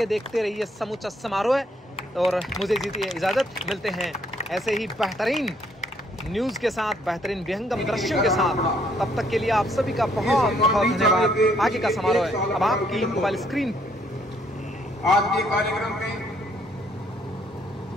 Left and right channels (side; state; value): both; normal; correlation 0.68